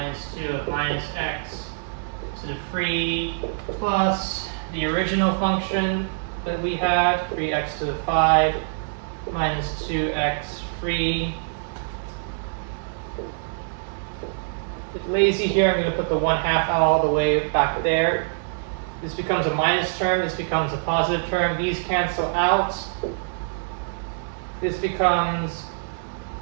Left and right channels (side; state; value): left; silent; 62 dB below the other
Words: 2 of minus x to the 3 plus the original function that we had, 3x to the 5 minus 2x 3. It's lazy here, I'm going to put the 1/2 all the way back there. This becomes a minus term, this becomes a positive term, these cancel out. This becomes,